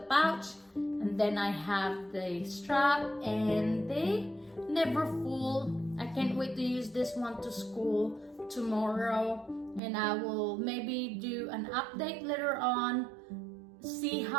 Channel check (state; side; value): drops out; left; at 9.8 s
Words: pouch, and then I have the strap and the Neverfull. I can't wait to use this one to school tomorrow, and I will maybe do an update later on, see